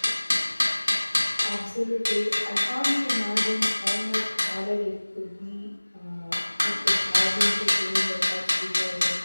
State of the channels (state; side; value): inverted; both; correlation -1.00